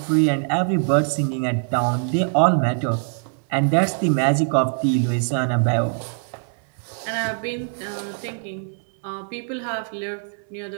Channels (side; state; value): left; silent; 61 dB below the other